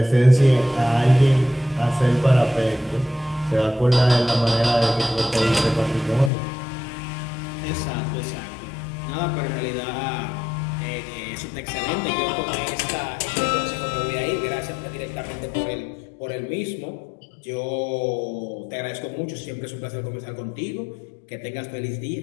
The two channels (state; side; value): drops out; right; at 6.3 s